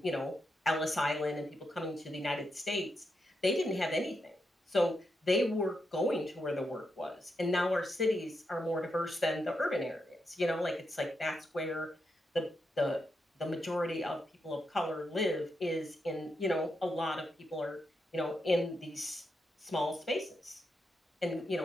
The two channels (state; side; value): normal; both; correlation 0.84